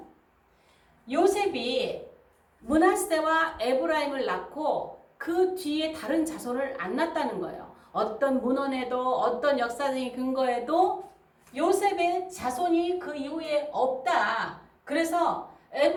요셉이 므낫세와 에브라임을 낳고 그 뒤에 다른 자손을 안 낳았다는 거예요. 어떤 문헌에도 어떤 역사적인 근거에도 요셉의 자손이 그 이후에 없다. 그래서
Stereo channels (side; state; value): both; identical; correlation 1.00